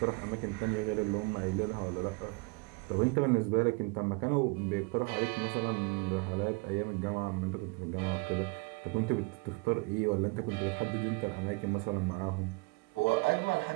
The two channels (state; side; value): quieter; left; 29.2 dB